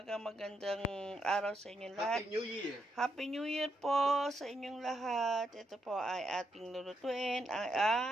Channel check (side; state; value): both; normal; correlation 0.79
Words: magandang araw sa inyong lahat. Happy New Year! Happy New Year po sa inyong lahat. Ito po ay ating lulutuin